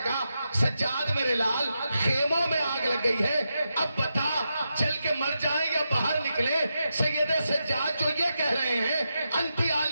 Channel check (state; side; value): inverted; both; correlation -0.87